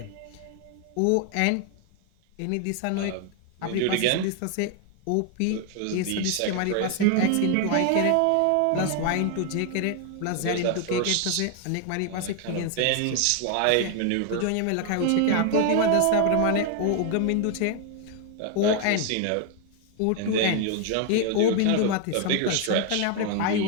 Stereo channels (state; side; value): different; both; correlation 0.00